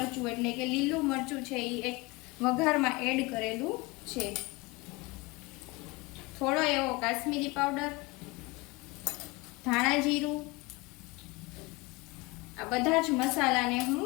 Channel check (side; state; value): right; quieter; 24.0 dB